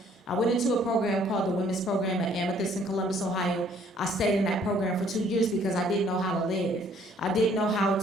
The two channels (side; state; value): both; normal; correlation 0.61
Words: I went into a program called the Women's Program at Amethyst in Columbus, Ohio. I stayed in that program for 2 years because I didn't know how to live. I didn't know how